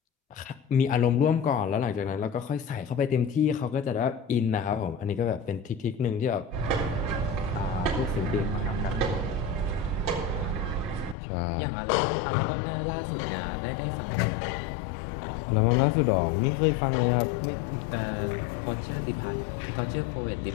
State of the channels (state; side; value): drops out; right; at 11.2 s